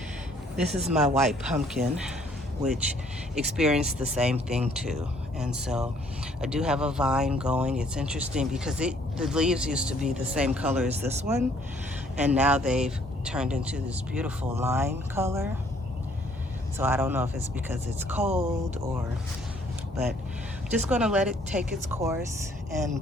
This is my white pumpkin, which experienced the same thing too. And so I do have a vine going. It's interesting because the leaves used to be the same color as this one, and now they've turned into this beautiful lime color. So I don't know if it's because it's cold but just gonna let it take its course and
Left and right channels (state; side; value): normal; both; correlation 0.62